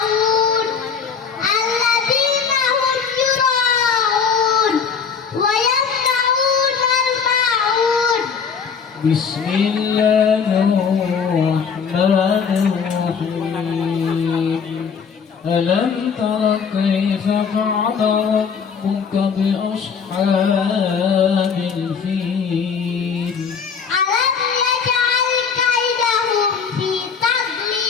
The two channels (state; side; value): quieter; right; 6.2 dB